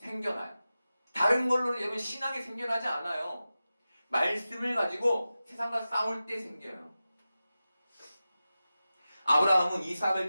다른 걸로는 여러분 신앙이 생겨나지 않아요. 말씀을 가지고 세상과 싸울 때 생겨요. 아브라함은 이삭을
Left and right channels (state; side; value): inverted; both; correlation -0.94